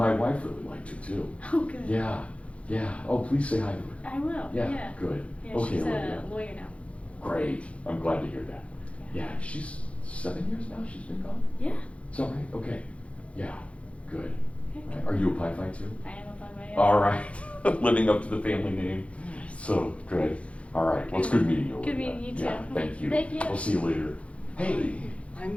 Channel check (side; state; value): right; late; 0.062 ms